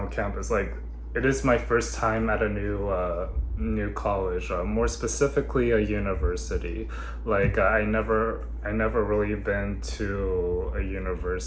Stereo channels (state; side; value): identical; both; correlation 1.00